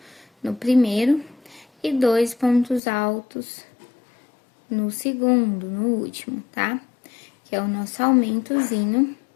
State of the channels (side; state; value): right; drops out; at 2.8 s